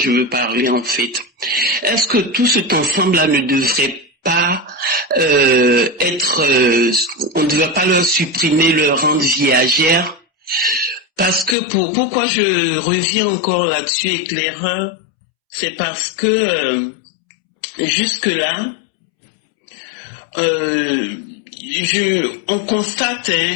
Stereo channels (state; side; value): drops out; right; at 11.6 s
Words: veux parler, en fait. Est-ce que tout cet ensemble-là ne devrait pas on ne devrait pas leur supprimer leur rente viagère, parce que pourquoi je reviens encore là-dessus, éclaireur, c'est parce que jusque là on constate